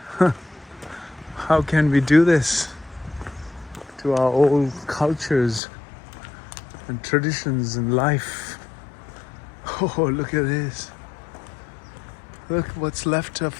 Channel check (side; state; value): right; drops out; at 5.6 s